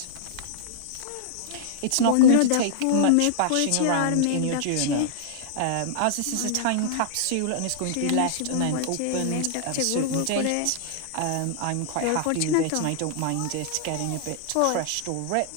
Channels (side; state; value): both; different; correlation -0.01